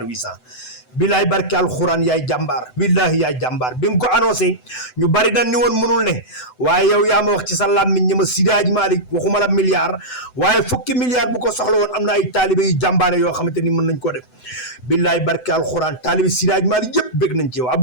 800 bilaay barke alxuraan yaay jàmbaar billahi yaay jàmbaar bi nga ko annoncé ñu bari dañ ni woon mënul ne waaye yow yaa ma wax ci sa làmmiñ ñi ma Seydi Hadji Malick waxuma la milliard waaye fukki milliard bu ko soxla woon am na ay taalibe yu jàmbaare yoo xamante ni mën nañ ko def billaay barke alxuraan taalibe Seydi Hadji Malick yëpp bég nañ ci yow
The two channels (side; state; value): right; late; 7.9 ms